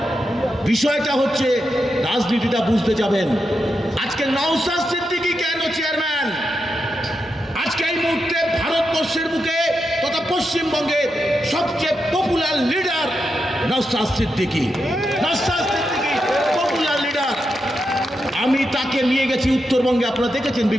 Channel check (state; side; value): normal; both; correlation 0.86